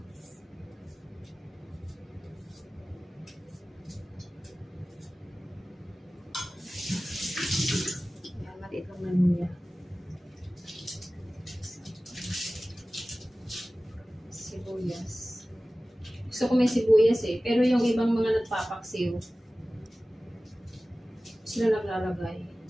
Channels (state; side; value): normal; both; correlation 0.97